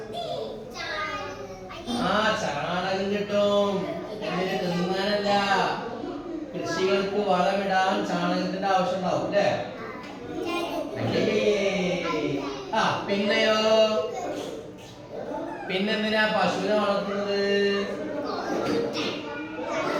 ആ ചാണകം കിട്ടും. എന്നിട്ട് തിന്നാനല്ല, കൃഷികൾക്ക് വളമിടാൻ ചാണകത്തിന്റെ ആവശ്യം ഉണ്ടാവും അല്ലേ? ആ പിന്നെയോ പിന്നെന്തിനാ പശുവിനെ വളർത്തുന്നത്?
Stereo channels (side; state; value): both; identical; correlation 1.00